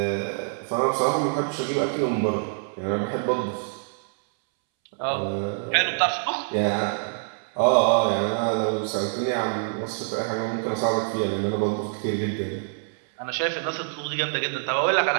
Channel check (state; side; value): silent; left; 61 dB below the other